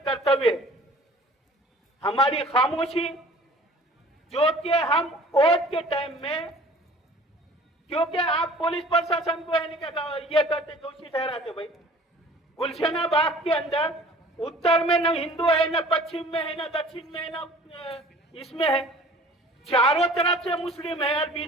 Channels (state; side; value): normal; both; correlation 0.48